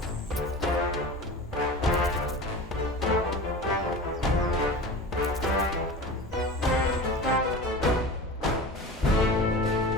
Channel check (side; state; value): both; normal; correlation 0.34